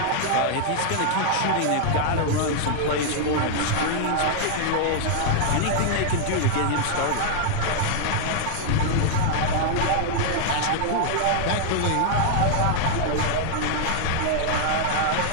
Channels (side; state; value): both; different; correlation -0.01